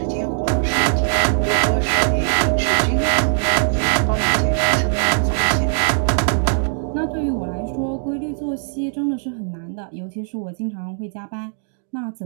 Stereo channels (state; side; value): silent; left; 66 dB below the other